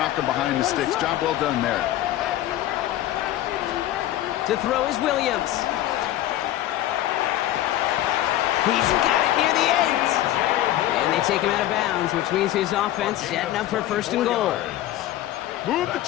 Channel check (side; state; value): right; quieter; 13.8 dB